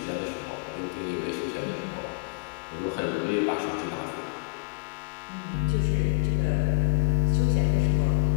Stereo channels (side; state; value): right; silent; digital silence